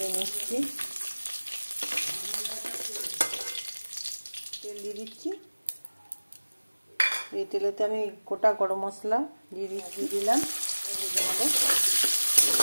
নিচ্ছি, তেল দিয়ে দিচ্ছি। এই তেলেতে আমি গোটা গরম মশলা দিয়ে দিলাম, ভেজে নেব।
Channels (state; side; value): inverted; both; correlation -1.00